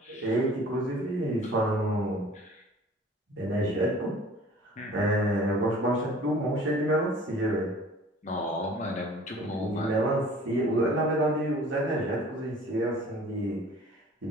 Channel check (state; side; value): normal; both; correlation 0.48